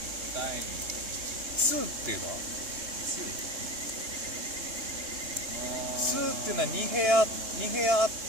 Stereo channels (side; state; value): left; late; 3.2 ms